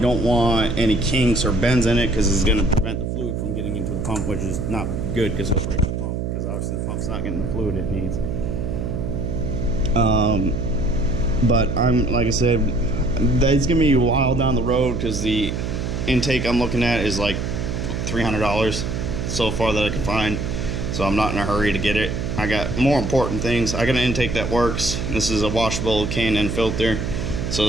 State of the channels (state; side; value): noise; right; hum, 2 dB below the sound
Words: want any kinks or bends in it, because it's gonna prevent the fluid from getting into the pump, which is not good because it'll break the pump, because obviously the pump's not getting the fluid it needs. But like I said, that's gonna be a while down the road, because the intake I'm looking at is like $300 so far that I can find, so I'm not in a hurry to get it. I I got more important things. I got an intake that works. This is a washable K&N filter, so